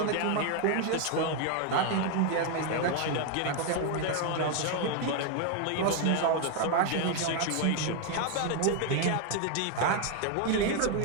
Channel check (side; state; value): both; different; correlation 0.01